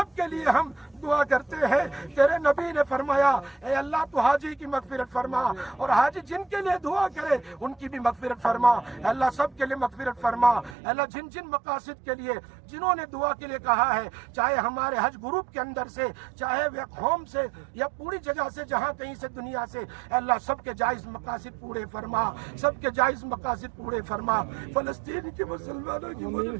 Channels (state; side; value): drops out; left; at 10.8 s